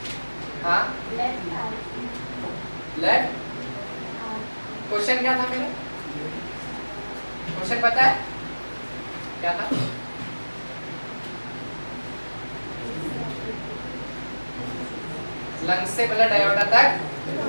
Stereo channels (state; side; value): inverted; both; correlation -1.00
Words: हाँ, लेफ्ट। क्वेश्चन क्या था मेरा? क्वेश्चन पता है क्या था? लंग्स से ब्लड एओर्टा तक